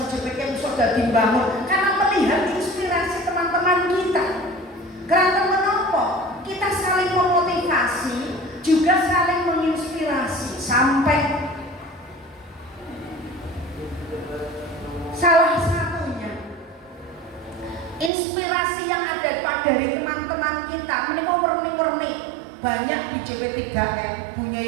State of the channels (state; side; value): drops out; left; at 18.1 s